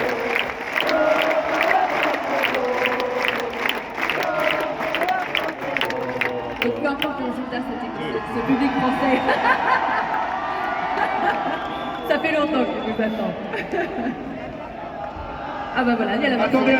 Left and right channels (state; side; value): identical; both; correlation 1.00